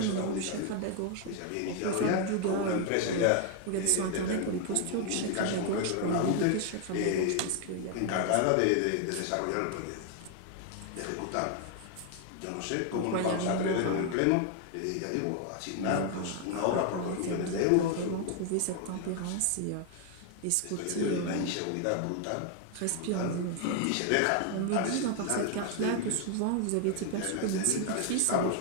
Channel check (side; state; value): both; different; correlation 0.00